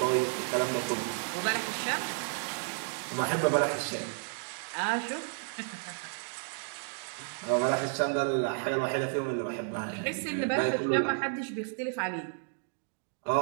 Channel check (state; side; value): silent; left; 56 dB below the other